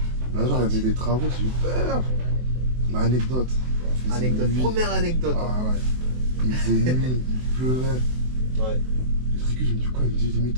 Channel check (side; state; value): left; late; 24 ms